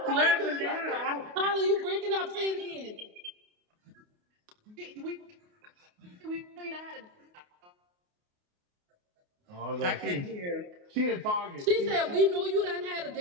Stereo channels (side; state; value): left; late; 28 ms